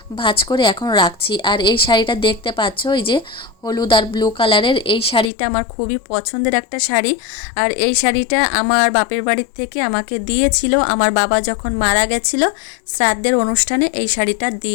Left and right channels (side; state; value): right; drops out; at 5.3 s